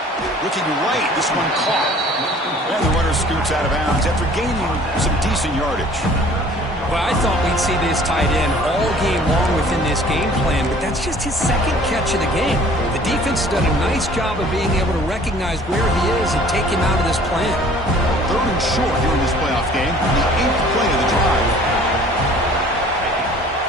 Looking right. This one caught. And the runner scoots out of bounds after gaining some decent yardage. Well, I thought we'd see this tight end all game long within this game plan, but that's just his second catch of the game. The defense has done a nice job of being able to recognize where he is and take him out of this plan. Third and short here in this playoff game, the 8th play of the drive.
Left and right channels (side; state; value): both; normal; correlation 0.52